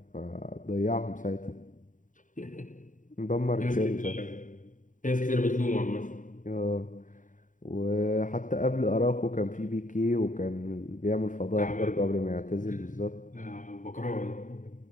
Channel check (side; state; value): right; late; 0.38 ms